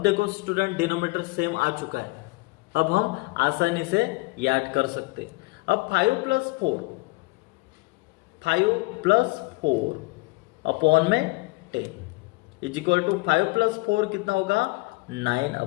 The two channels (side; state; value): right; quieter; 24.3 dB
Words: देखो स्टूडेंट डिनोमिनेटर सेम आ चुका है, अब हम आसानी से याद कर सकते। अब 5 + 4 अपॉन में 10 इज इक्वल टू 5 + 4 कितना होगा